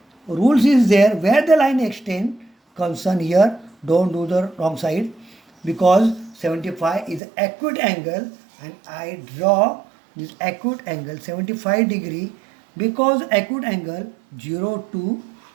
rules is there where the line extend. Concern here, don't do the wrong side because 75 is acute angle and I draw this acute angle 75 degree because acute angle 0 to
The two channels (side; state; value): left; drops out; at 7.2 s